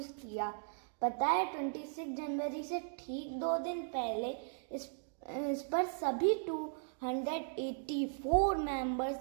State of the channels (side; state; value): left; silent; digital silence